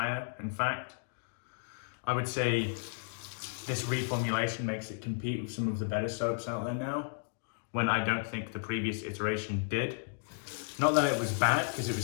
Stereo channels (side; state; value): right; silent; digital silence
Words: in fact. I would say this reformulation makes it compete with some of the better soaps out there now, when I don't think the previous iteration did. Not that it was bad, because it was